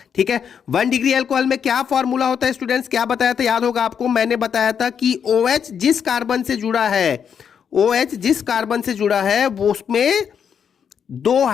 ठीक है, 1 डिग्री एल्कोहल में क्या फॉर्मूला होता है स्टूडेंट्स? क्या बताया था, याद होगा आपको, मैंने बताया था कि OH जिस कार्बन से जुड़ा है, OH जिस कार्बन से जुड़ा है वो उसमें 2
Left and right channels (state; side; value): quieter; right; 7.6 dB